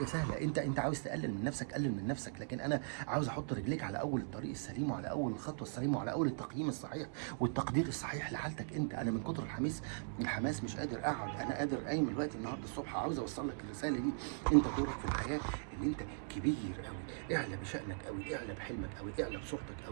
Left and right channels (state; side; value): silent; left; digital silence